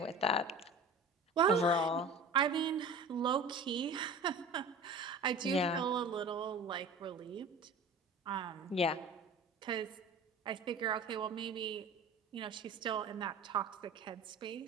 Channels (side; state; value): left; quieter; 3.2 dB